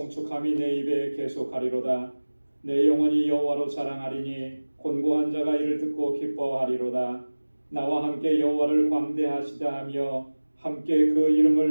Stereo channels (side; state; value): both; inverted; correlation -1.00